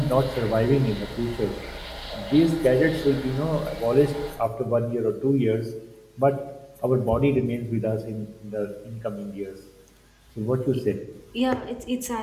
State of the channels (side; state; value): both; identical; correlation 1.00